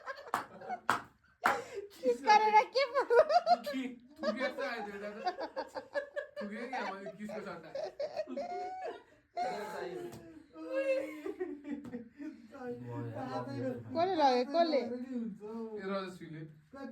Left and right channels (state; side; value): identical; both; correlation 1.00